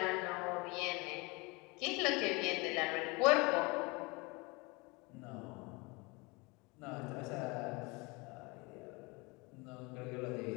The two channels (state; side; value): quieter; right; 26.7 dB